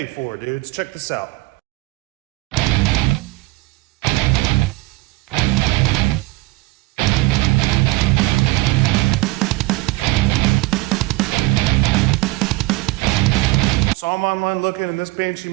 for, dudes. Check this out. So I'm online looking, and this Banshee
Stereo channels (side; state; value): left; quieter; 21.0 dB